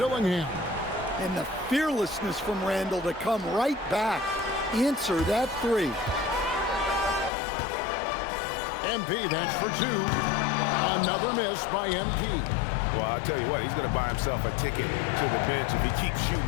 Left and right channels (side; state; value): right; drops out; at 7.3 s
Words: And the fearlessness from Randall to come right back. Answer that three. MP, that's for two. Another miss by MP. Well, I'll tell you what, he's going to buy himself a ticket to the bench if he keeps shooting